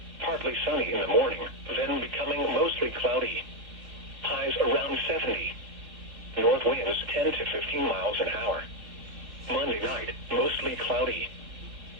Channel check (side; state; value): left; late; 3.7 ms